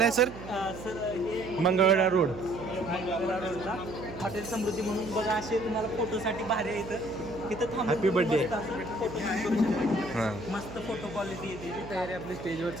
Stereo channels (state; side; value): noise; right; hum, 12 dB below the sound